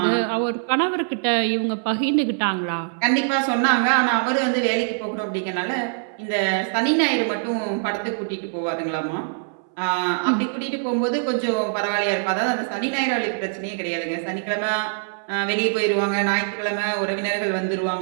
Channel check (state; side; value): silent; left; 63 dB below the other